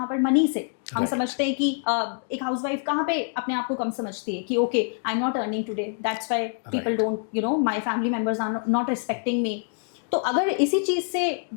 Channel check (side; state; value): right; silent; 61 dB below the other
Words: पर मनी से। हम समझते हैं कि एक हाउसवाइफ कहाँ पे अपने आप को कम समझती है कि okay, I am not earning today, that's why people don't my family members are not respecting me. तो अगर इसी चीज़ से